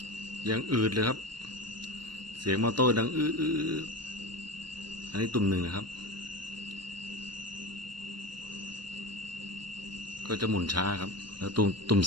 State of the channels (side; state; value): left; late; 0.72 ms